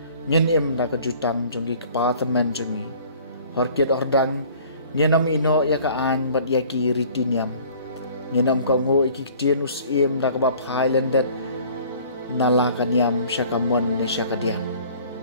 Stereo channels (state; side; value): inverted; both; correlation -0.51